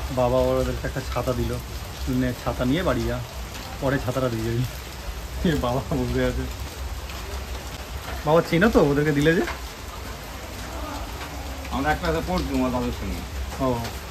বাবা ওদেরকে একটা ছাতা দিল, ছাতা নিয়ে বাড়ি যা, পরে ছাতাটা দিয়ে যাবি। বাবা বসে আছে। বাবা চেনো তো ওদেরকে দিলে যে? আমরা একটা পড়ছি তাদের সঙ্গে। ও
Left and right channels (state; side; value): identical; both; correlation 1.00